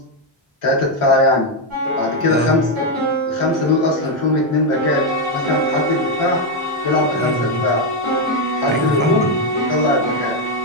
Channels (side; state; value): both; normal; correlation 0.04